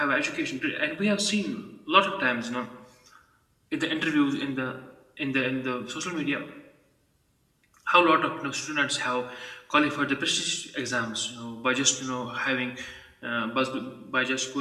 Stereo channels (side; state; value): both; identical; correlation 1.00